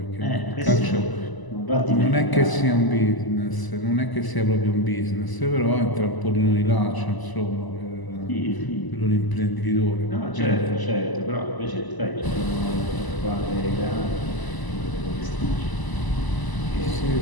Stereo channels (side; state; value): right; late; 1.0 ms